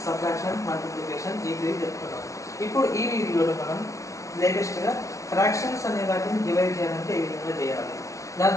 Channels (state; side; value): late; right; 0.15 ms